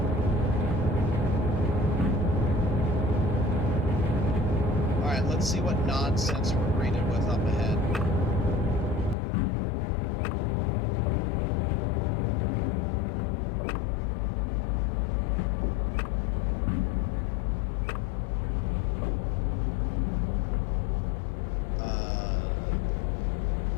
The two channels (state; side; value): drops out; right; at 9.2 s